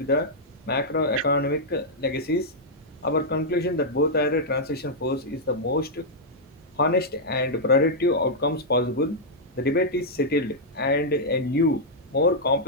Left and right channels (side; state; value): both; normal; correlation -0.07